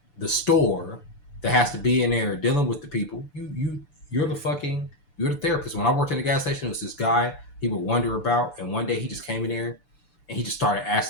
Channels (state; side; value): late; right; 6.9 ms